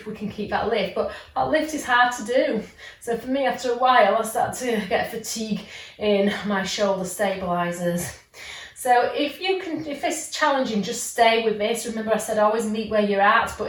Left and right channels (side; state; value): both; identical; correlation 1.00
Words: we can keep that lift. But that lift is hard to do. So for me, after a while, I start to get fatigue in my shoulder stabilizers. So if this is challenging, just stay with this. Remember I said always meet where you're at,